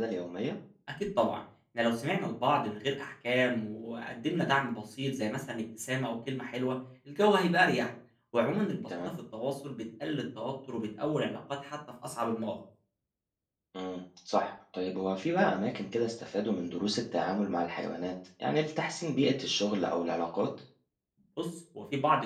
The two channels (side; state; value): both; identical; correlation 1.00